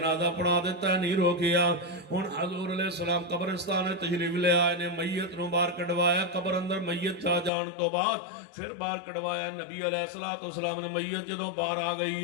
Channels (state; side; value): drops out; right; at 7.5 s